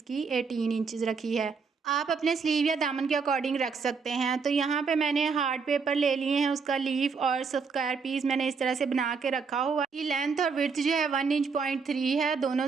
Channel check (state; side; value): quieter; left; 5.3 dB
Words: 18 इंचज़ रखी है। आप अपने स्लीव या दामन के अकॉर्डिंग रख सकते हैं। तो यहाँ पे मैंने हार्ड पेपर ले लिए हैं, उसका लीफ और स्क्वायर पीस मैंने इस तरह से बना के रखा हुआ है। ये लेंथ और विड्थ जो है 1.3 इंच है, दोनों